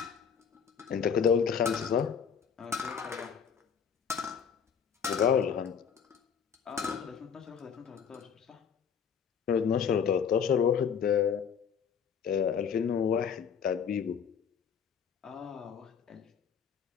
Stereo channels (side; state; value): right; quieter; 7.2 dB